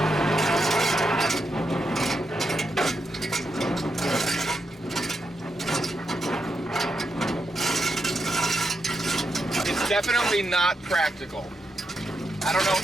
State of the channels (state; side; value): normal; both; correlation 0.83